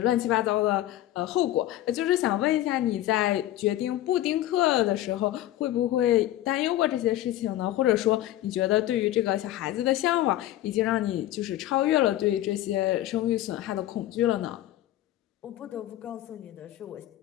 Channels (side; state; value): right; quieter; 14.0 dB